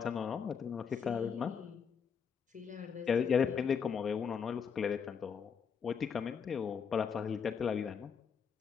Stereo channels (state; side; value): quieter; right; 6.7 dB